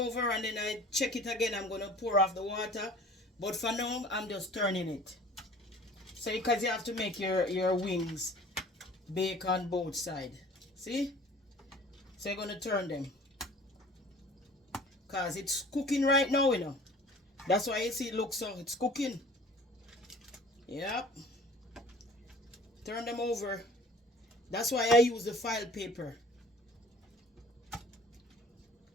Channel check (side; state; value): both; normal; correlation 0.47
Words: and then I check it again, I'm going to pour off the water. But for now, I'm just turning it. So because you have to make your wings bake on both sides. See? So you're going to turn them. Because it's cooking right now, you know. That's why you see it looks so, it's cooking. Yep. Turn them over. That's why I use the file paper.